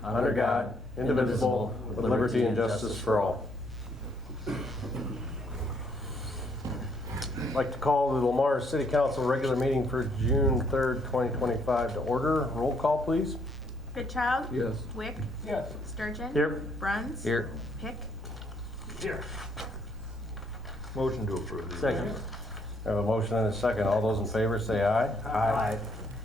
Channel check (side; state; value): both; normal; correlation 0.69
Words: under God, indivisible, with liberty and justice for all. I'd like to call the Lamar City Council regular meeting for June 3rd, 2025 to order. Roll call, please. Goodchild? Yes. Wick? Yes. Sturgeon? Here. Bruns? Here. Pick? Here. Motion to approve. Second. I have a motion and a second. All those in favor say aye. Aye.